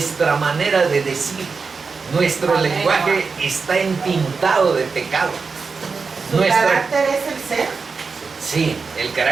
manera de decir. Nuestro lenguaje está entintado de pecado. ¿Su carácter es el ser? Sí, el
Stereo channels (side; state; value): left; quieter; 4.8 dB